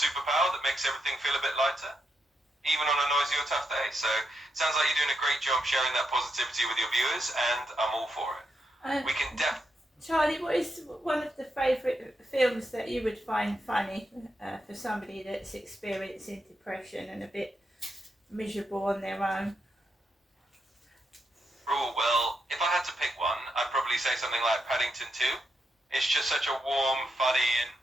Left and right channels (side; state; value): both; normal; correlation 0.83